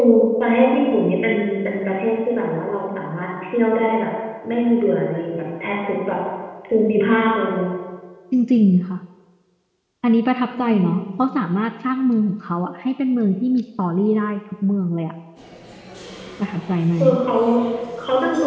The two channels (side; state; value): both; identical; correlation 1.00